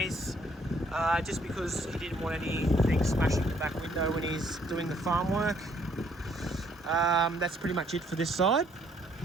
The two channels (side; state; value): both; normal; correlation 0.66